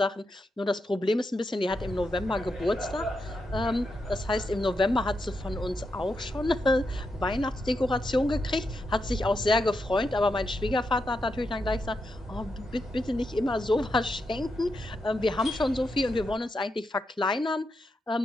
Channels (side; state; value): both; normal; correlation 0.84